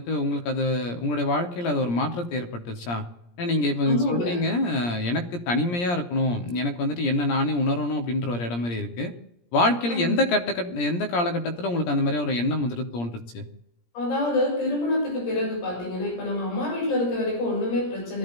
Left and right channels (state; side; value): late; right; 17 ms